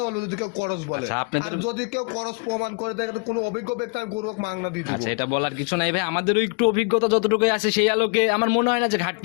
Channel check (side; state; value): right; quieter; 34.7 dB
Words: বলবে যদি কেউ করস বলে। আচ্ছা, আপনাদের- আর যদি কেউ করস প্রমাণ করে থাকে, তো কোনো অভিজ্ঞ ব্যক্তি আমি গরু মাংনা দিয়ে দিব। আচ্ছা, এটা বলার কিছু নাই ভাই, আমাদেরও একটু অভিজ্ঞতা যতটুকু আছে সেই আলোকে আমার মনে হয় না যে